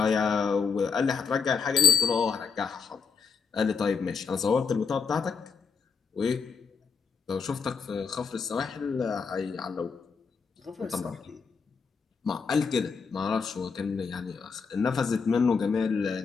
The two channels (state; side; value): quieter; right; 5.5 dB